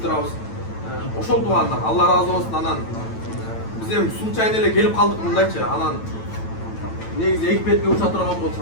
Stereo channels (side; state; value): right; late; 9.0 ms